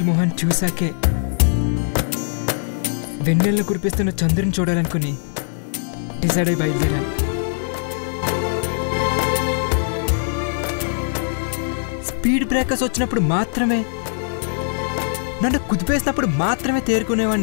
మొహన్ చూశాకే వెన్నెలను కురిపిస్తున్న చంద్రుని చూడాలనుకుని డిసైడ్ అయి బయలుదేరాను. స్పీడ్ బ్రేకర్స్ వచ్చినప్పుడు మాత్రమే, నన్ను కుదిపేసినప్పుడు మాత్రమే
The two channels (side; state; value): right; silent; digital silence